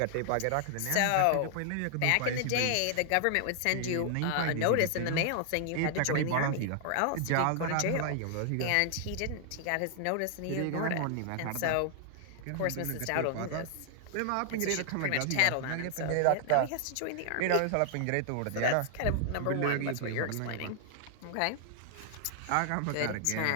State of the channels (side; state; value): both; different; correlation 0.00